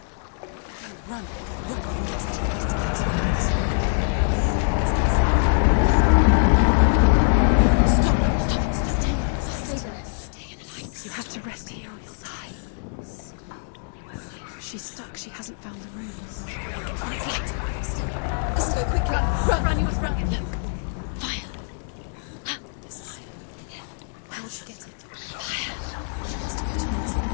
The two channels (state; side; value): silent; right; digital silence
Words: Run. You have to rest here or you'll die. She's stuck. She hasn't found the rooms. Let's go quickly. Run, you must run. Look. Fire. There's fire. How will she get it? Fire. She has to go towards it.